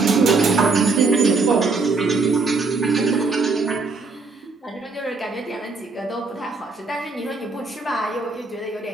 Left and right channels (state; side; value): quieter; left; 4.0 dB